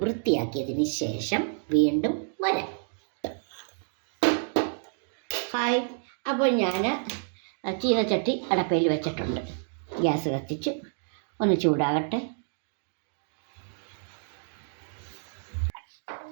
വൃത്തിയാക്കിയതിന് ശേഷം വീണ്ടും വരാം. ഹായ്, അപ്പോൾ ഞാൻ ചീനച്ചട്ടി അടപ്പയിൽ വെച്ചിട്ടുണ്ട്. ഗ്യാസ് കത്തിച്ച് ഒന്ന് ചൂടാകട്ടെ.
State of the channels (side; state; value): left; silent; 59 dB below the other